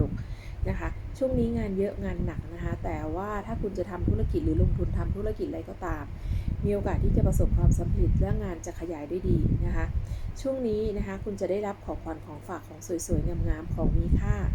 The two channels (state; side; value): identical; both; correlation 1.00